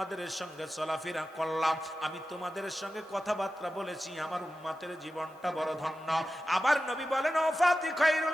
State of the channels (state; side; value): normal; both; correlation 0.93